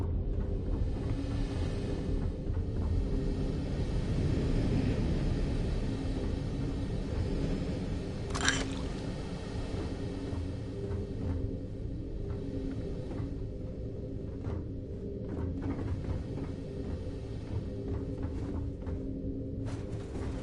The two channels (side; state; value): both; identical; correlation 1.00